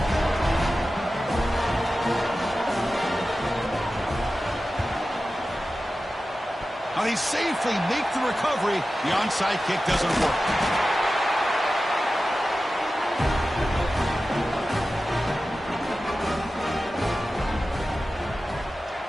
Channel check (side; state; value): both; normal; correlation 0.94